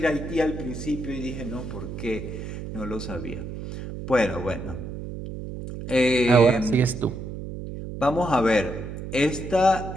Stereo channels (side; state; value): right; noise; hum, 8 dB below the sound